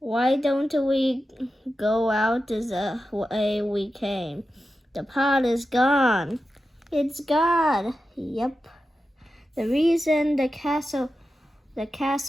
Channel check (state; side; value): normal; both; correlation 0.91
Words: don't we go out the way we came? The pod is gone. It's gone. Yep. The reason the castles